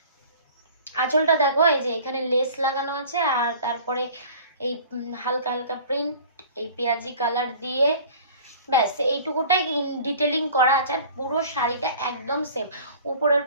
আঁচলটা দেখো, এই যে এখানে লেস লাগানো আছে, আর তারপরে এই হালকা হালকা প্রিন্ট, এই পেঁয়াজি কালার দিয়ে, ব্যাস এইটুকুটাই ডিটেলিং করা আছে। আর পুরো শাড়িটা একদম সেম। উপরের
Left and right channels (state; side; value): inverted; both; correlation -0.45